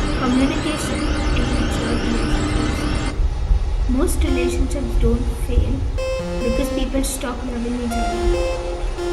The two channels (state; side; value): identical; both; correlation 1.00